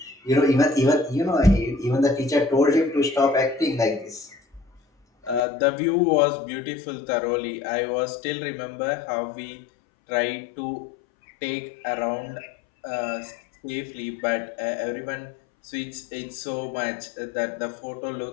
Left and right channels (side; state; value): right; drops out; at 5.4 s